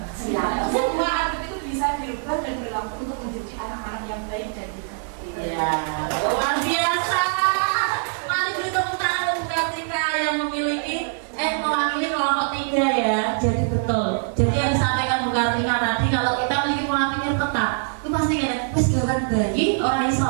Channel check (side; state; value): left; silent; 63 dB below the other